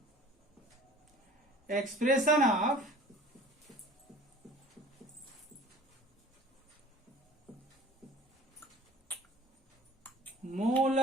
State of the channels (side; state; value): both; normal; correlation 0.47